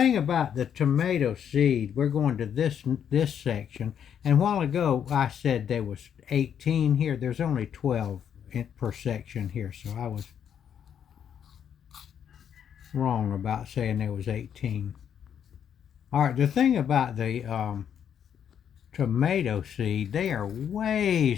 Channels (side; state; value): right; quieter; 8.6 dB